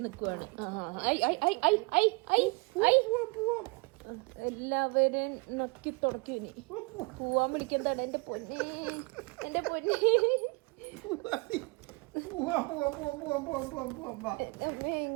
നിക്കുവാണ്. എല്ലാവരും നക്കി തുടക്കി. ഇനി പോവാൻ വിളിക്കുന്നതാണ്. എന്റെ പൊന്നെ, എന്റെ പൊന്നെ,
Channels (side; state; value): left; quieter; 29.3 dB